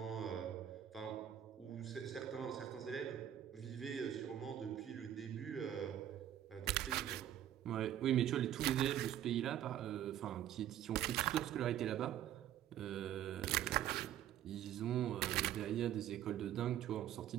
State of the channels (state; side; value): quieter; left; 11.3 dB